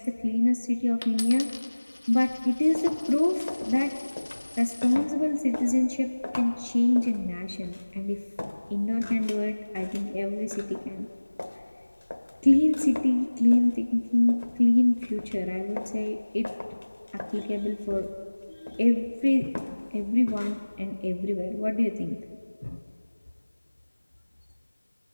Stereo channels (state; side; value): inverted; both; correlation -1.00